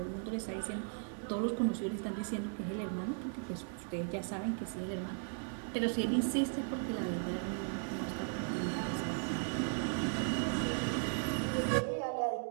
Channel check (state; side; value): silent; left; 53 dB below the other